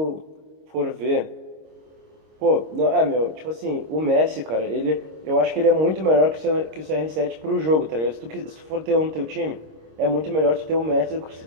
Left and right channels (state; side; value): late; left; 26 ms